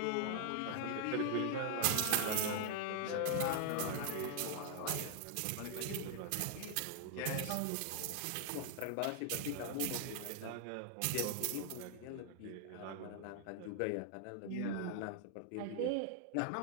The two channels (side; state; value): both; different; correlation 0.00